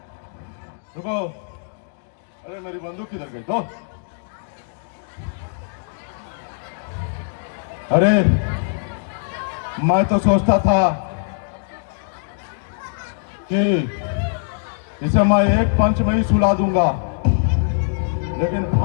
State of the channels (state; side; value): silent; right; digital silence